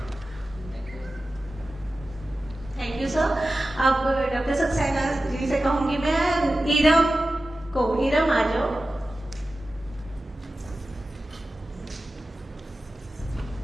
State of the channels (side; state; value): both; normal; correlation 0.94